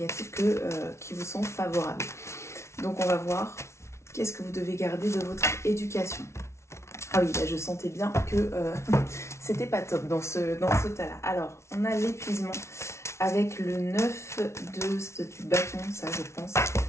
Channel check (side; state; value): right; late; 0.13 ms